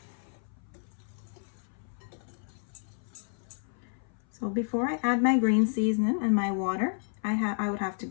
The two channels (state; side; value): silent; right; 57 dB below the other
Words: So before I add my green seasoning and my water, I would have to